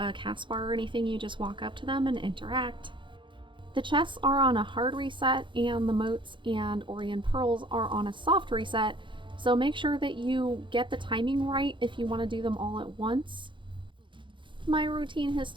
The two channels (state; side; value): late; left; 0.24 ms